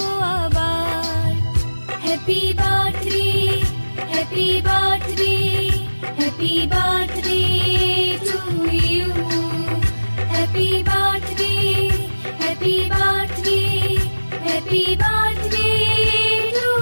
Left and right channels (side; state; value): both; inverted; correlation -1.00